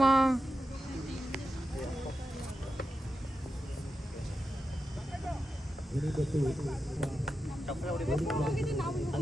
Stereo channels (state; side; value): normal; both; correlation 0.90